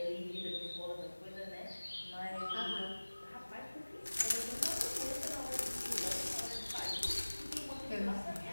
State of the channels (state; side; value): inverted; both; correlation -1.00